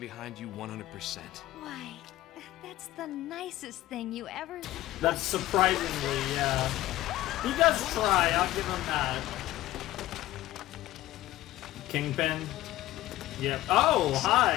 you 100%. Why, that's the nicest thing you ever... That's surprisingly, yeah. He does try, I'll give him that. Kingpin. Yep. Oh,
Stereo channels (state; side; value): quieter; right; 15.8 dB